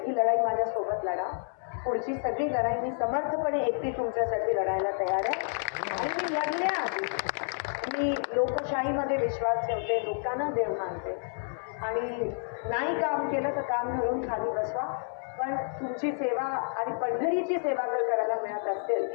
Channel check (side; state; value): right; silent; 58 dB below the other